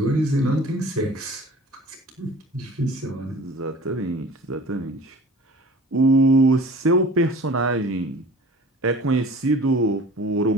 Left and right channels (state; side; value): normal; both; correlation 0.44